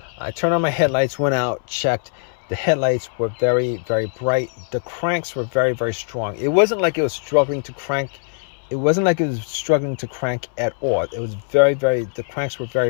I turned on my headlights, went out, checked. The headlights were very, very bright. The cranks were very, very strong. It wasn't like it was struggling to crank. It wasn't like it was struggling to crank at all. It was very, very, the cranks were very,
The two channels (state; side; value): silent; right; 65 dB below the other